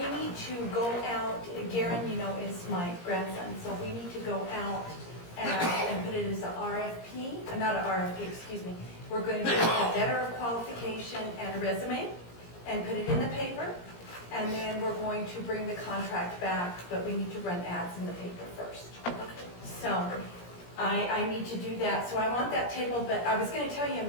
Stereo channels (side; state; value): right; late; 17 ms